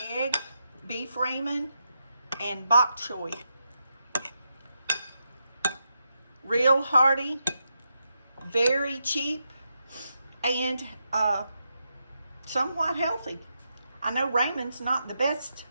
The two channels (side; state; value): both; inverted; correlation -0.85